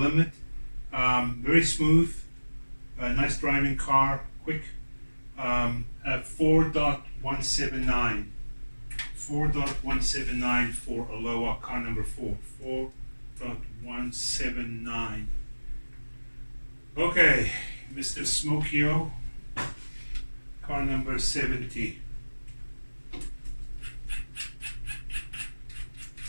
Very smooth, nice driving car, quick. At 4.179, 4.179 for Aloha, car number 4, 4.179. Okay, Mr. Smokio, car number 70.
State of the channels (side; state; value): both; inverted; correlation -1.00